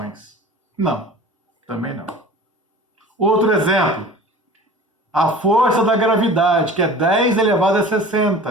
Não, também não. Outro exemplo, a força da gravidade, que é 10 elevado a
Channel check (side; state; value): both; normal; correlation 0.41